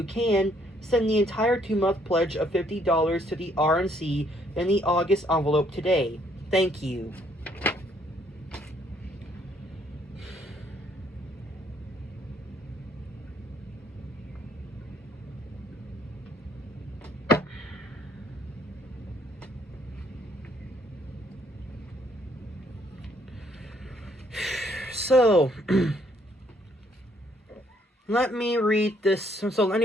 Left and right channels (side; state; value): both; normal; correlation 0.67